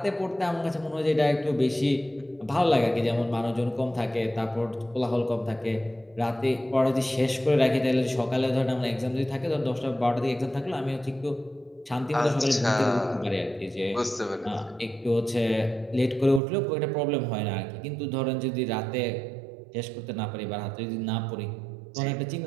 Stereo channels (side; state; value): left; drops out; at 16.4 s